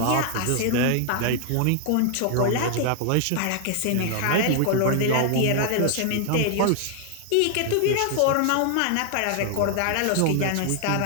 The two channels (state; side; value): different; both; correlation 0.00